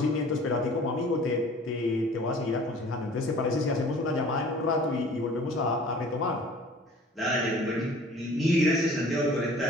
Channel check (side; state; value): both; normal; correlation 0.48